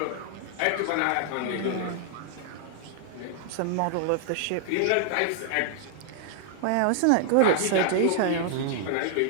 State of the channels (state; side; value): different; both; correlation -0.01